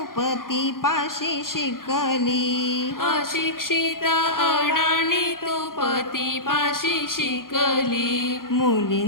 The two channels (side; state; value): right; late; 0.91 ms